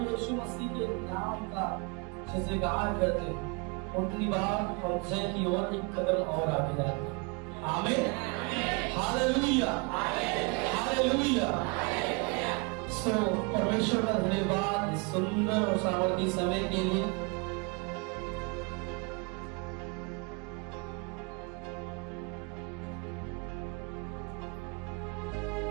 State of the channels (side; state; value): left; quieter; 31.6 dB